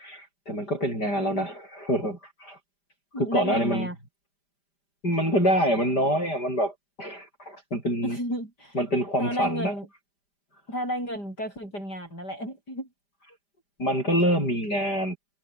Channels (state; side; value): late; right; 5.0 ms